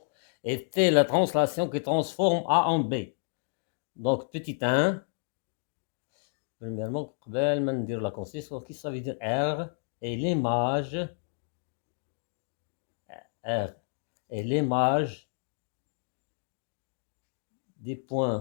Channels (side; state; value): right; silent; digital silence